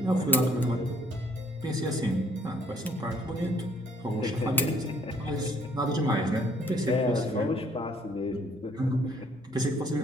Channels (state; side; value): normal; both; correlation 0.62